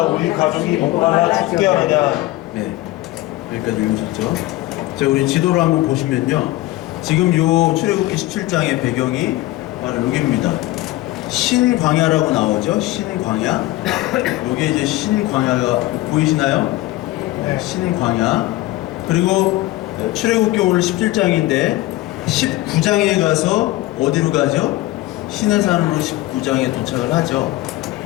우리 가족이 목마라 죽게 하느냐. 네, 여기까지 읽으셨죠? 자, 우리 지도를 한번 보시면요, 지금 요 출애굽기 17장의 배경이 바로 여기입니다. 신광야라고 나오죠? 신광야. 여기 이제 신광야가 보이시나요? 네, 신광야. 그리고 출애굽기 오늘 17장인데 19장에 가서 어디로 가죠? 시내산으로 19장에 도착을 하죠.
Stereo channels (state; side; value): quieter; right; 17.5 dB